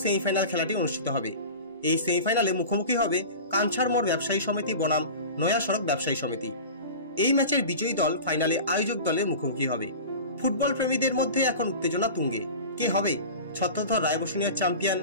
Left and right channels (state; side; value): inverted; both; correlation -0.34